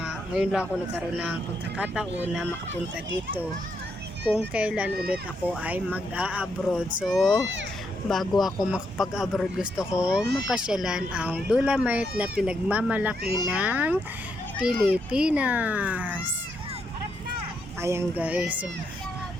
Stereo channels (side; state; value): both; normal; correlation 0.78